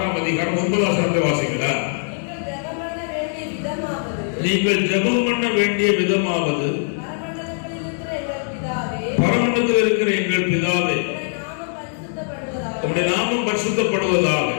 அதிகாரம் 9 வசனத்தை வாசிங்களா? நீங்கள் ஜெபம் பண்ண வேண்டிய விதமாவது, பரமண்டலத்தில் இருக்கிற எங்கள் பிதாவே, உம்முடைய நாமம் பரிசுத்தப்படுவதாக,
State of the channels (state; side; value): silent; right; digital silence